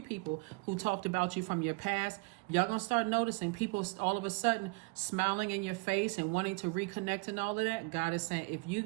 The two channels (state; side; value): quieter; left; 28.8 dB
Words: people who talked about you from your past. Y'all gonna start noticing people all of a sudden smiling in your face and wanting to reconnect and all of that. God is saying, if you